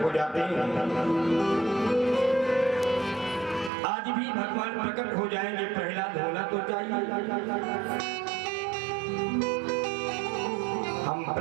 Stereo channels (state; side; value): drops out; left; at 3.7 s